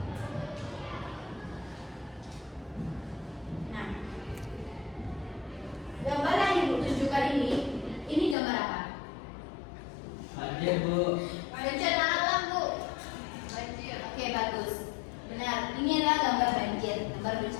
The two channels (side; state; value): right; drops out; at 8.3 s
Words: Nah, gambar yang Ibu tunjukkan ini gambar apa? Banjir, Bu. Bencana alam, Bu. Banjir. Oke, bagus. Benar. Ini adalah gambar banjir, gambar